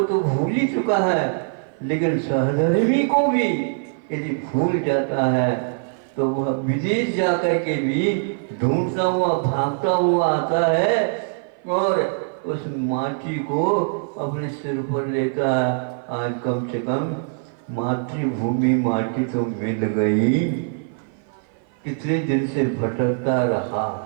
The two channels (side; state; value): left; silent; 55 dB below the other